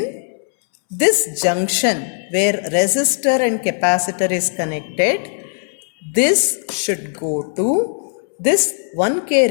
this junction where resistor and capacitor is connected, this should go to this 1K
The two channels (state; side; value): silent; right; 67 dB below the other